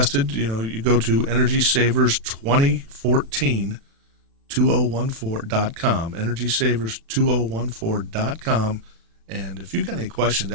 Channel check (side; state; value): left; late; 36 ms